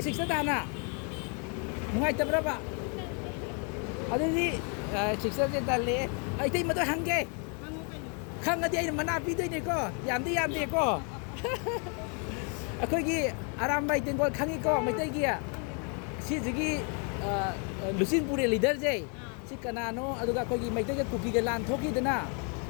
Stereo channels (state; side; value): quieter; right; 38.1 dB